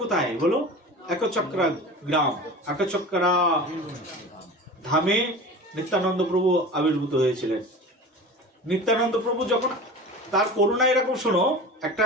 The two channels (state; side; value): normal; both; correlation 0.34